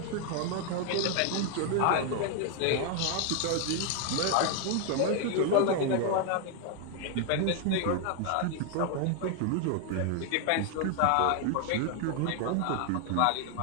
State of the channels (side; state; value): both; different; correlation 0.00